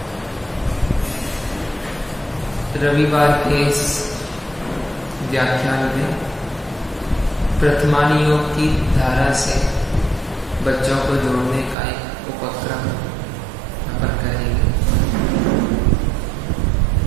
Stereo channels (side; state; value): left; drops out; at 11.8 s